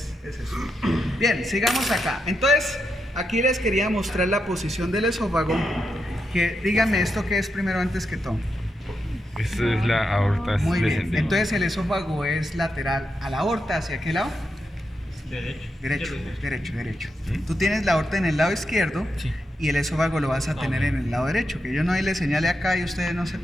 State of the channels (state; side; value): normal; both; correlation 0.85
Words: es eso. Bien, sigamos acá. Entonces, aquí les quería mostrar la posición del esófago. Que díganme esto que es primero antes que todo. Esta es la aorta Muy bien. descendente. Entonces el esófago es lateral a la aorta. ¿Hacia qué lado? Derecho. Derecho. Tú tienes la aorta en el lado izquierdo Sí. y el esófago lo vas a tener en el lado derecho, que yo no le señale acá y ustedes no